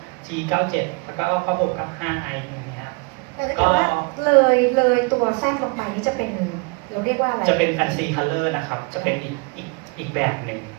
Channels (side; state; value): left; quieter; 31.4 dB